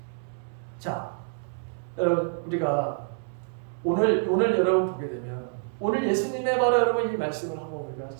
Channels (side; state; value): left; silent; 60 dB below the other